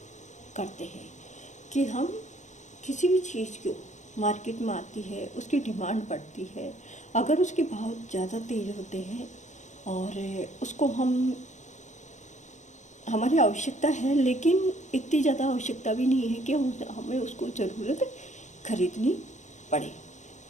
करते हैं। कि हम किसी भी चीज़ को मार्केट में आती है, उसकी डिमांड बढ़ती है, अगर उसके भाव ज़्यादा तेज़ होते हैं और उसको हमारी आवश्यकता है, लेकिन इतनी ज़्यादा आवश्यकता भी नहीं है कि हमें उसको ज़रूरत खरीदनी पड़े,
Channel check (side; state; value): right; late; 0.35 ms